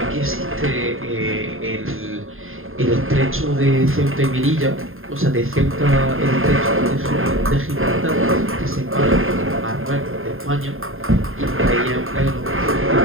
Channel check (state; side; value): late; left; 0.60 ms